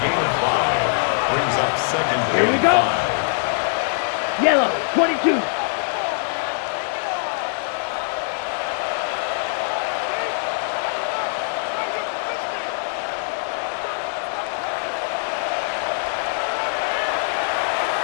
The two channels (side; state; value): right; silent; digital silence